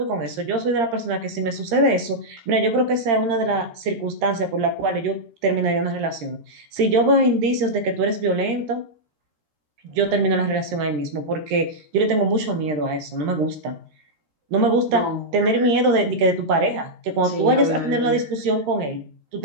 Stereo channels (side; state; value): left; late; 13 ms